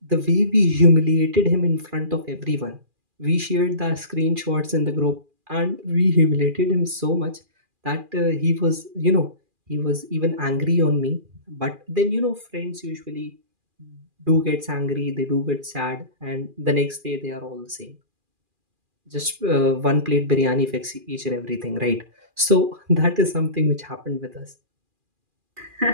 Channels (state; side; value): late; left; 2.4 ms